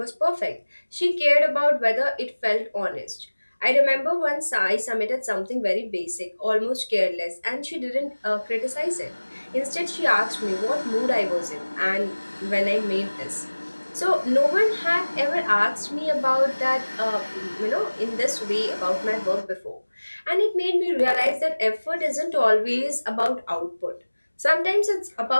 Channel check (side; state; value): both; inverted; correlation -1.00